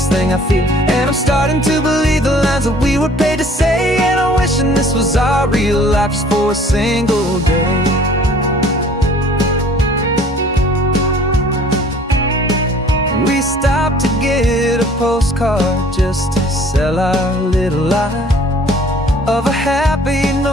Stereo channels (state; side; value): normal; both; correlation 0.53